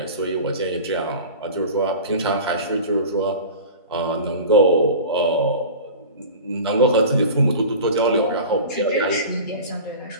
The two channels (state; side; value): inverted; both; correlation -0.35